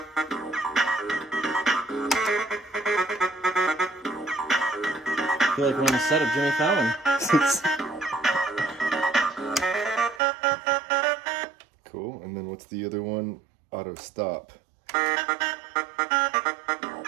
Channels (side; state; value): left; drops out; at 10.2 s